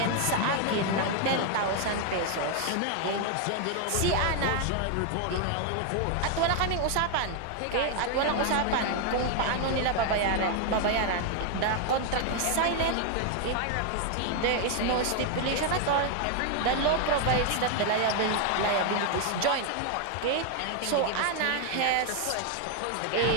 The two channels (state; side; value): different; both; correlation 0.00